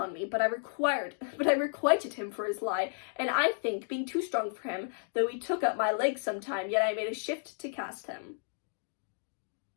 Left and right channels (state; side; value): silent; right; digital silence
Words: me, but I requited him for his lie, and I think, being too strong for him, though he took up my legs sometime, yet I made a shift to cast him.